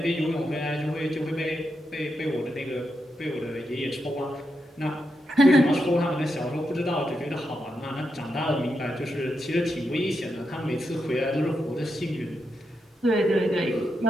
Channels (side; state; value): both; normal; correlation 0.84